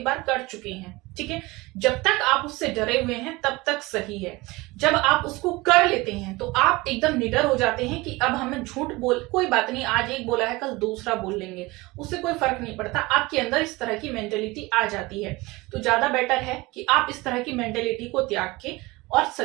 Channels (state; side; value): quieter; left; 22.2 dB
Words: बार कर चुके हैं, ठीक है। जब तक आप उससे डरे हुए हैं तब तक सही है। जब आप उसको कर लेते हैं तो आप एकदम निडर हो जाते हैं कि अब हमें झूठ बोल, कोई बात नहीं, आज एक बोला है कल दूसरा बोल लेंगे, उससे कोई फर्क नहीं पड़ता। आपके अंदर इस तरह की मेंटेलिटी आ जाती है। तो ज्यादा बेटर है कि आप इस तरह की मेंटेलिटी को त्याग के और